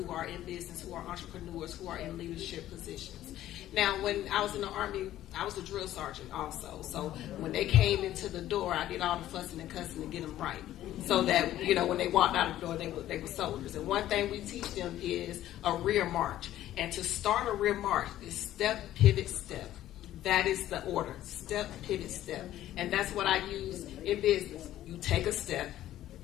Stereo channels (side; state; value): right; quieter; 13.3 dB